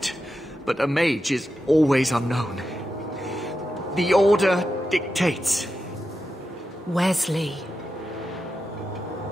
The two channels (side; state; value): both; normal; correlation 0.89